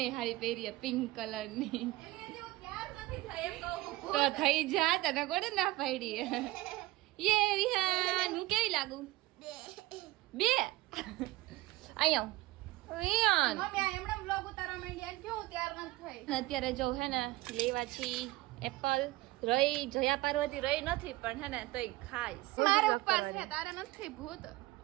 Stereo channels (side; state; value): left; quieter; 19.2 dB